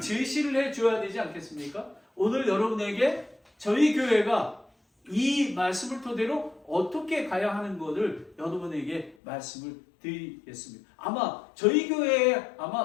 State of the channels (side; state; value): right; drops out; at 9.2 s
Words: 해줘야 되지 않겠습니까? 오늘 여러분에게 저희 교회가 이 말씀을 토대로 어떻게 가야 하는 것을 여러분에게 말씀을 드리겠습니다. 아마 저희 교회에